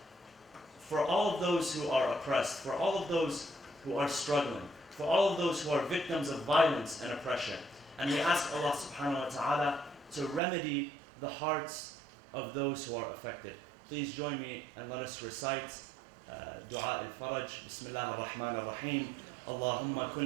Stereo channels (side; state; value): left; drops out; at 10.4 s